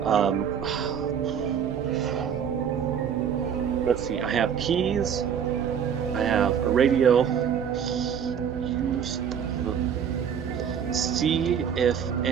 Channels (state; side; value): quieter; left; 7.9 dB